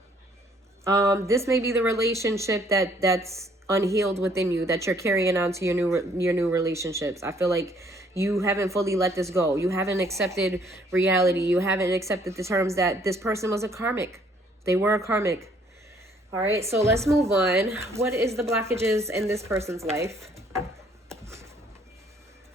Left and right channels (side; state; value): both; normal; correlation 0.63